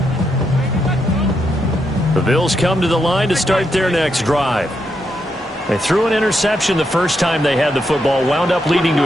The Bills come to the line to start their next drive. They threw an interception the first time they had the football, wound up leading to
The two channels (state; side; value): normal; both; correlation 0.81